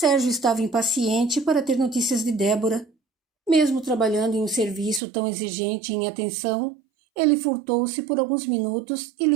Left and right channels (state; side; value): drops out; left; at 5.0 s